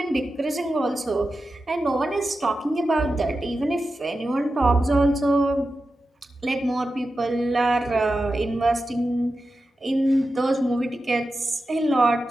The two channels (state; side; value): normal; both; correlation 0.92